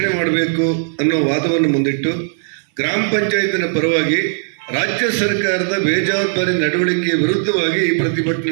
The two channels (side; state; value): left; silent; 62 dB below the other